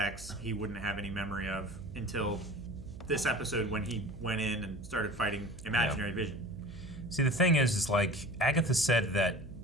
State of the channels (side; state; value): right; noise; hum, 14 dB below the sound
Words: he wouldn't have any memory of until this episode when he went in and started fighting imaginary Vision. See, the thing is like Agatha said that